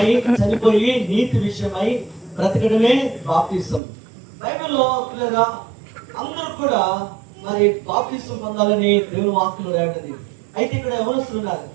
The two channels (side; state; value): left; drops out; at 3.8 s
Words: చనిపోయి నీతి విషయమై బ్రతకడమే బాప్తిసం. బైబిల్లో పిల్లరా అందరూ కూడా మరి బాప్తిసం పొందాలని దేవుని వాక్యంలో రాయబడింది. అయితే ఇక్కడ యవనస్తులు ఉన్నారు.